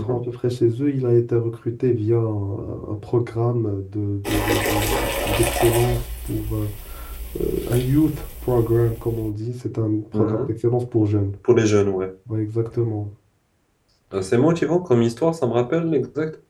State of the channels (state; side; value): identical; both; correlation 1.00